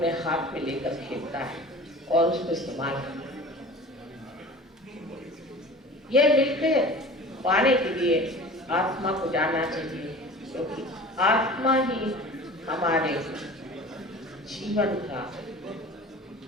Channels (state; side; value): normal; both; correlation 0.40